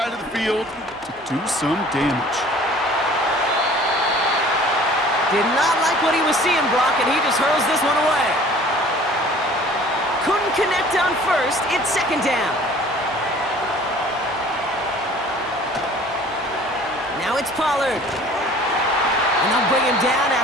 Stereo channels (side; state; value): both; normal; correlation 0.49